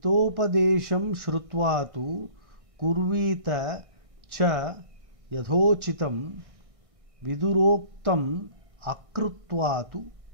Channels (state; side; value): late; left; 1.6 ms